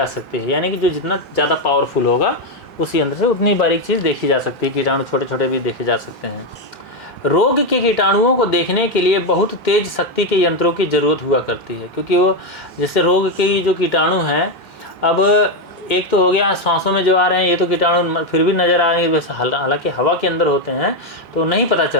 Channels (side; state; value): both; normal; correlation 0.07